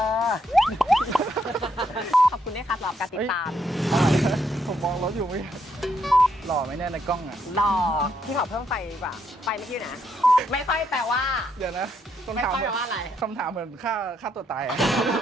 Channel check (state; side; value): normal; both; correlation 0.75